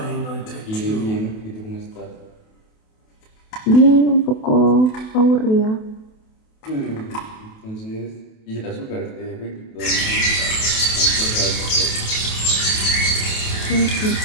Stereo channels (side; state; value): right; late; 28 ms